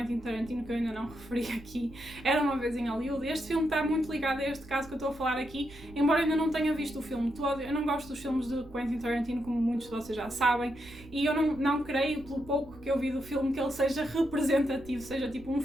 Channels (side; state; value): right; noise; rumble, 19 dB below the sound